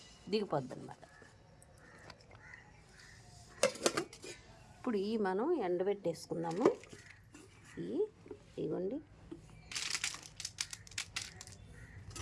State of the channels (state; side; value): identical; both; correlation 1.00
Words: దిగిపోద్ది అనమాట. ఇప్పుడు ఈ మనం ఎండబెట్టేసుకుందాము. ఇగోండి